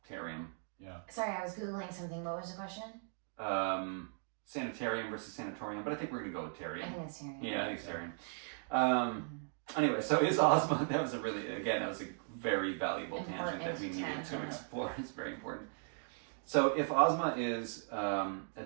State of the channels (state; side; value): silent; left; 53 dB below the other